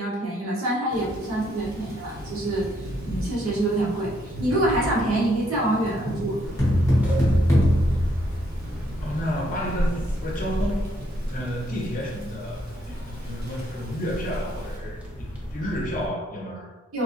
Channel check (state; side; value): normal; both; correlation 0.72